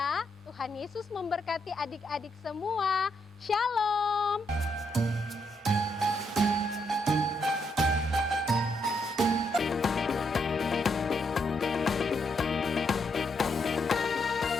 Tuhan Yesus memberkati adik-adik semua. Shalom.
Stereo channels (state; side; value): normal; both; correlation 0.77